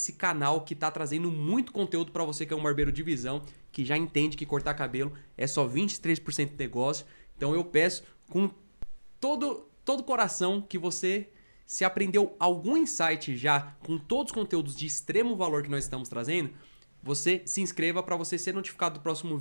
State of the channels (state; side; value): inverted; both; correlation -1.00